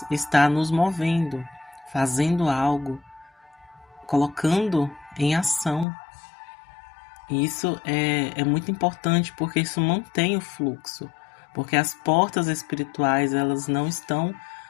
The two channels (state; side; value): drops out; right; at 5.9 s